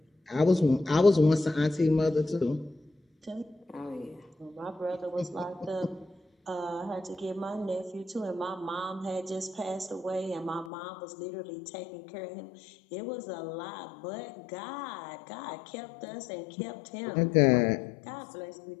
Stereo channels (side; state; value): right; drops out; at 10.7 s